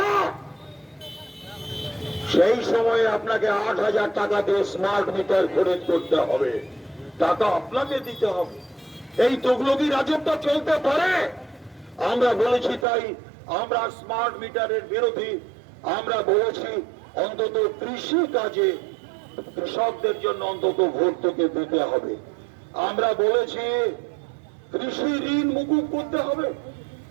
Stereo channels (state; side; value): drops out; left; at 12.9 s